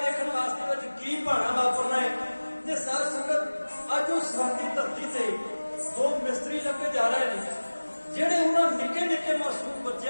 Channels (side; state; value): both; inverted; correlation -1.00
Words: ਵਾਸਤੇ ਵਿੱਚ ਕੀ ਭਾਣਾ ਵਾਪਰਨਾ ਹੈ। ਤੇ ਸਾਧ ਸੰਗਤ ਅੱਜ ਉਹ ਸਰਹੰਦ ਦੀ ਧਰਤੀ ਤੇ ਦੋ ਮਿਸਤਰੀ ਲੱਗੇ ਜਾ ਰਹੇ ਨੇ, ਜਿਹੜੇ ਉਹਨਾਂ ਨਿੱਕੇ ਨਿੱਕੇ ਮਾਸੂਮ